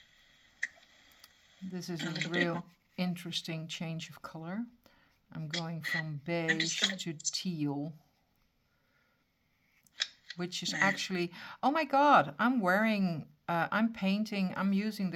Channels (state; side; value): identical; both; correlation 1.00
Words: This is a real interesting change of color. I'm going from beige to teal, which is actually, oh my God, I'm using